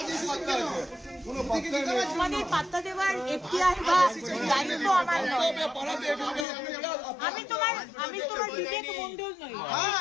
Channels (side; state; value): right; drops out; at 6.5 s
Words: তোমাদের পাত্তা দেওয়ার এখতিয়ার বা দায়িত্ব আমার নয়। আমি তোমার বিবেক মন্ডল নই।